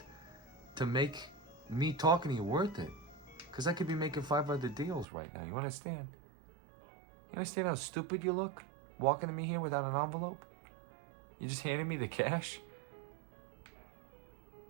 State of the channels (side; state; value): left; drops out; at 5.1 s